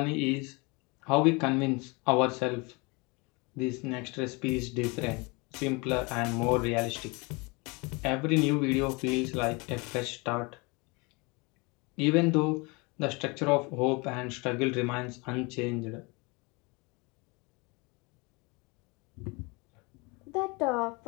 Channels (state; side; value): quieter; right; 28.0 dB